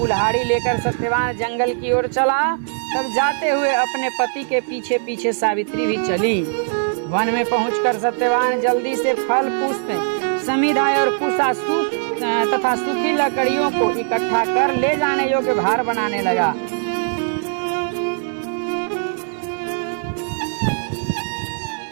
लेकर सत्यवान जंगल की ओर चला तब जाते हुए अपने पति के पीछे पीछे सावित्री भी चली। वन में पहुंचकर सत्यवान जल्दी से फल पुष्प समिधाय और कुशा तथा सूखी लकड़ियों को इकट्ठा कर ले जाने योग्य भार बनाने लगा।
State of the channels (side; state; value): left; silent; digital silence